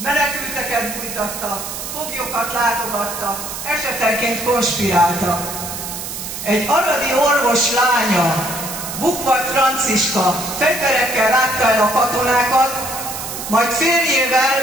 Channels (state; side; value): noise; right; hiss, 7 dB below the sound